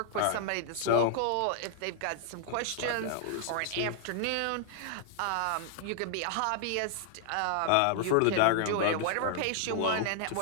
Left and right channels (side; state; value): both; different; correlation -0.01